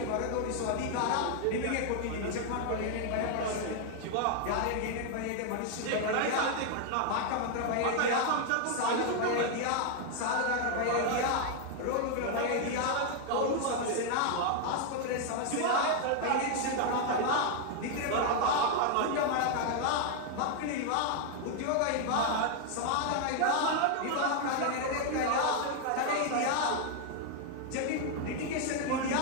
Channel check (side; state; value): both; different; correlation 0.00